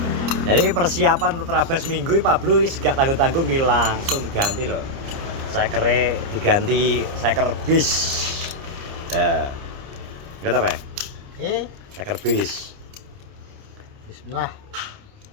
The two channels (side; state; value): left; late; 29 ms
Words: Jadi persiapan untuk terabas minggu Pablo gak tanggung-tanggung langsung diganti loh. Saya kere diganti, saya kerbis. Nah, nggak apa ya? Oke. Saya kerbis. Bismillah.